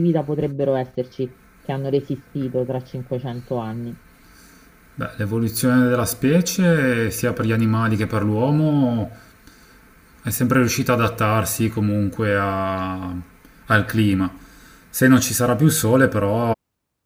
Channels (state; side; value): identical; both; correlation 1.00